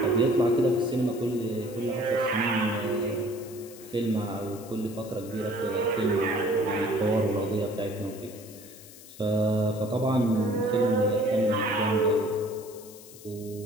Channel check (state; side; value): noise; left; hiss, 19 dB below the sound